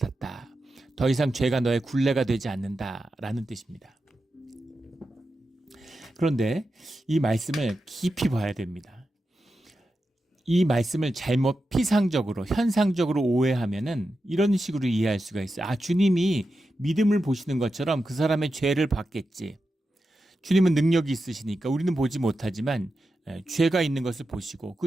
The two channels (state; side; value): normal; both; correlation 0.90